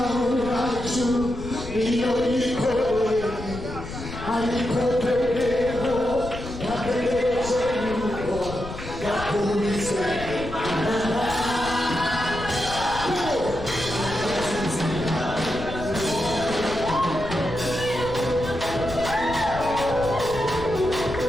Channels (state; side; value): noise; left; rumble, 10 dB below the sound